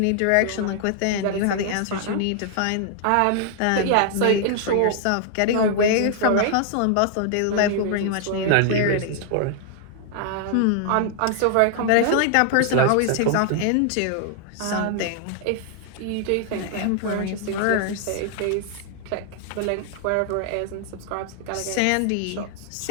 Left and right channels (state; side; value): different; both; correlation 0.00